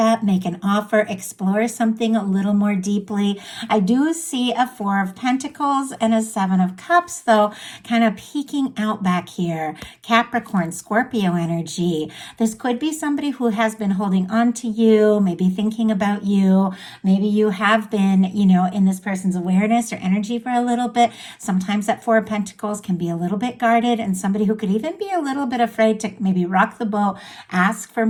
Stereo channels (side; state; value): both; identical; correlation 1.00